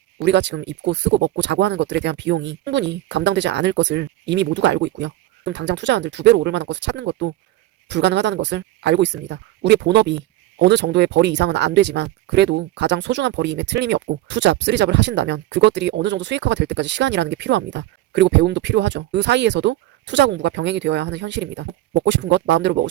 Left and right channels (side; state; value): left; quieter; 15.1 dB